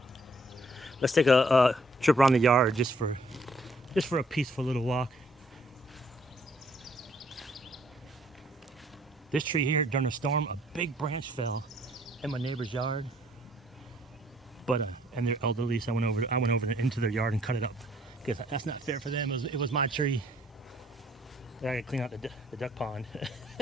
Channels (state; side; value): normal; both; correlation 0.64